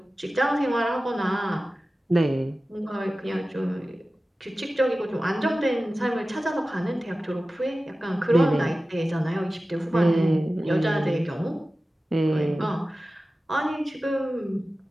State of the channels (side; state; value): both; normal; correlation 0.95